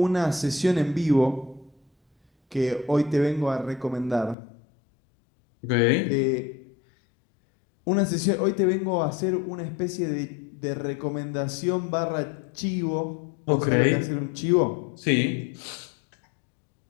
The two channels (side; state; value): right; drops out; at 4.4 s